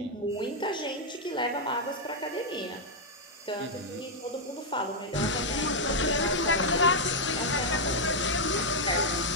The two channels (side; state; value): both; normal; correlation -0.02